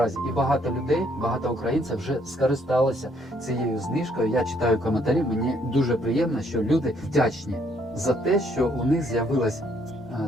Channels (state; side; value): normal; both; correlation 0.68